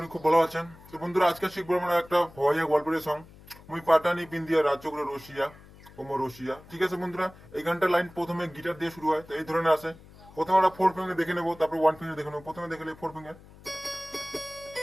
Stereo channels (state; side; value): noise; left; hum, 22 dB below the sound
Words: খুব ভালো আছেন। তো বন্ধুরা, আজকে শিখবো আমরা একটা ভয়া গল্পের সং মুই পাটানি পিন্দিয়া রাজ্য করে রশিয়া ওমো রশিয়া। ঠিক আছে বন্ধুরা, এই গানটার লাইন প্রথমে গিটার দিয়ে শুরু হয়, তো এই ধরনের আছে। প্রথমে আমরা ফোর ফিঙ্গার দেখে নেবো, তারপর ওয়ান ফিঙ্গার দেখে নেবো। প্রথমে দেখে নেবো ফোর ফিঙ্গার।